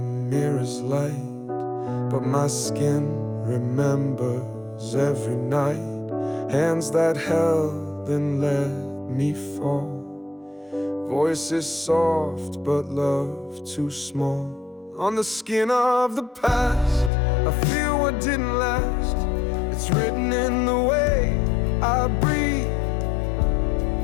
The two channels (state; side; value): drops out; right; at 17.1 s